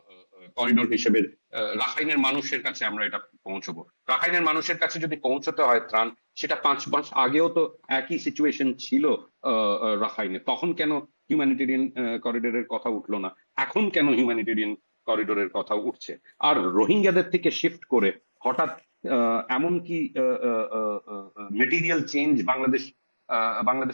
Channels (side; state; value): both; inverted; correlation -1.00